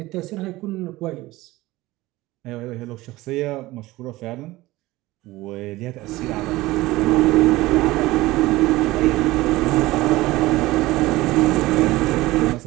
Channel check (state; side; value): quieter; left; 18.7 dB